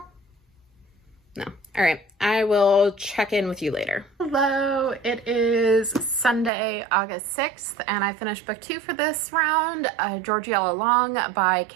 No. All right. I will check in with you later. Hello. It is Sunday, August 6th, and I finished book 2 for this round, Georgie All Along by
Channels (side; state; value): left; drops out; at 6.5 s